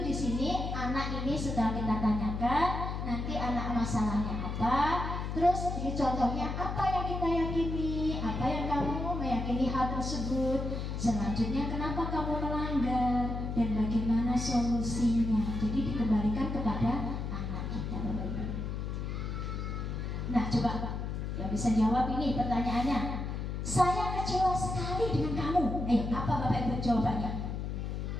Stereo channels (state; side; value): noise; left; hum, 3 dB below the sound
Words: di sini anak ini setelah kita tanyakan, nanti anak masalahnya apa, terus ini contohnya apa yang kita yakini, apa yang kamu meyakini hal tersebut, selanjutnya kenapa kamu melanggar dan bagaimana solusinya. Jadi dikembalikan kepada anak kita, Bapak Ibu. Nah coba yang bisa jawab ini pertanyaannya, saya kecewa sekali dengan kamu. Ayo, apa Bapak Ibu jawabannya?